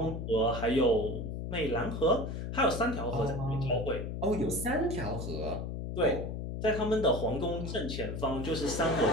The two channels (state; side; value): noise; left; hum, 5 dB below the sound